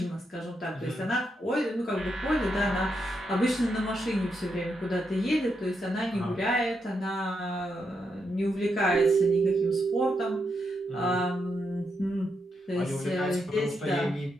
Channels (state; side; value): normal; both; correlation 0.82